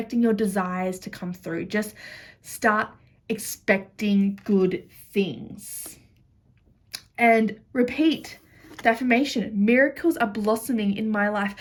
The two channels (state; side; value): identical; both; correlation 1.00